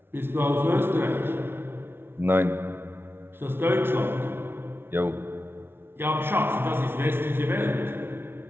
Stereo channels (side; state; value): left; late; 0.11 ms